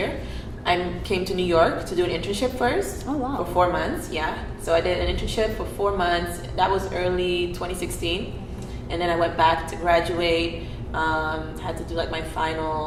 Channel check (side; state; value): both; identical; correlation 1.00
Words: I came to New York to do an internship first. Oh, wow. For 4 months, yeah. So I did an internship for 4 months. That was early 2016. And then I went back to graduate, had to do like my